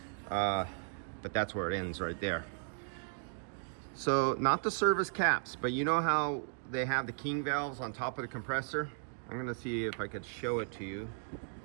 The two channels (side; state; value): left; silent; digital silence